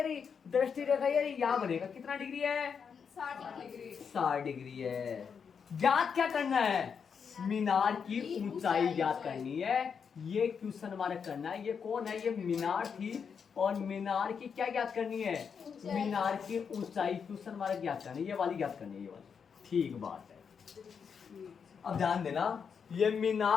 रही, दृष्टि रेखा ये रही, यहाँ बनेगा। कितना डिग्री है? 60 डिग्री है। ज्ञात क्या करना है? मीनार की ऊंचाई ज्ञात करनी है। ये क्वेश्चन मार्क करना है। ये कौन है? ये मीनार थी, और मीनार की क्या ज्ञात करनी है? मीनार की ऊंचाई क्वेश्चन मार्क ज्ञात करनी है। ये वाली ज्ञात करनी है, ये वाली। ठीक बात है। अब ध्यान देना, ये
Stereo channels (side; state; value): right; quieter; 6.5 dB